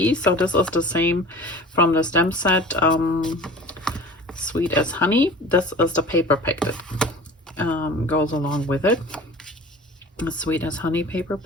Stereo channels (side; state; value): both; normal; correlation 0.41